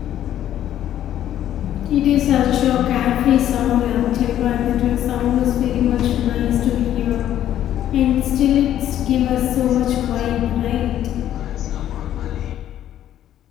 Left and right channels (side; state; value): right; quieter; 11.6 dB